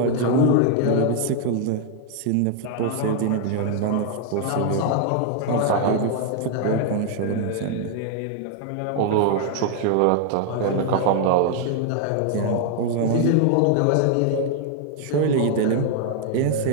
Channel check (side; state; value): both; different; correlation 0.00